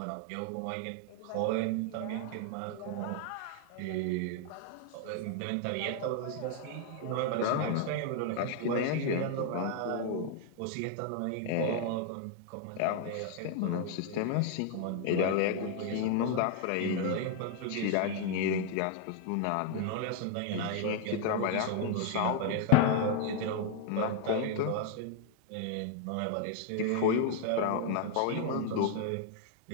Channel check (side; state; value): both; different; correlation 0.00